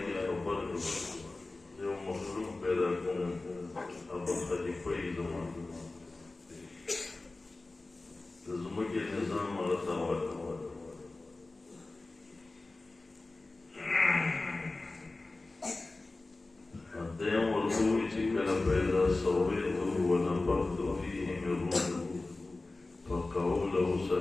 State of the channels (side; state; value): right; quieter; 3.2 dB